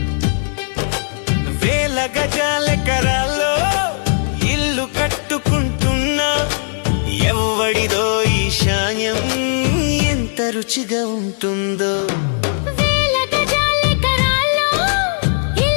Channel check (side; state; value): right; silent; digital silence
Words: గజాలెకరాల్లో ఇల్లు కట్టుకుంటున్నా, ఎవ్వడిదో ఈశాన్యం ఎంత రుచిగా ఉంటుందో.